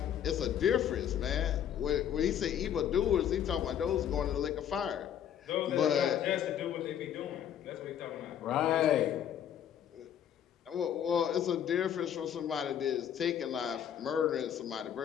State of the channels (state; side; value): quieter; right; 9.6 dB